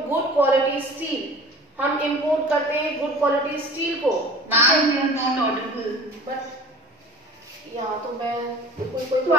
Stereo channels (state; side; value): normal; both; correlation 0.42